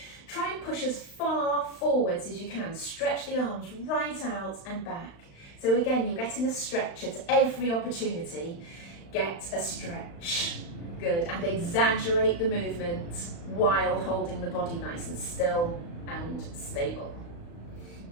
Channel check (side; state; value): right; late; 35 ms